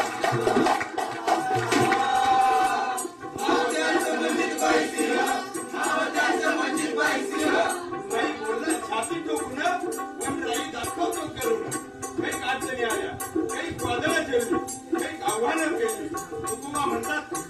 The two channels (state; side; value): identical; both; correlation 1.00